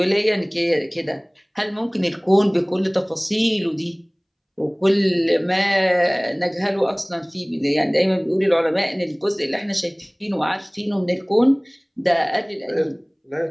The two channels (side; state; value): both; identical; correlation 1.00